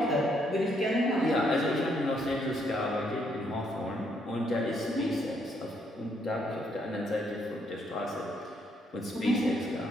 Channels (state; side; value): normal; both; correlation 0.72